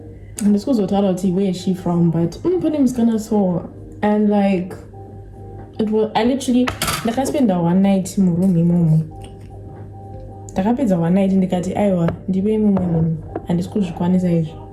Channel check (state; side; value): identical; both; correlation 1.00